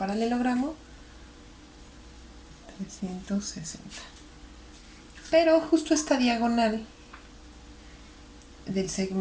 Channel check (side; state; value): both; identical; correlation 1.00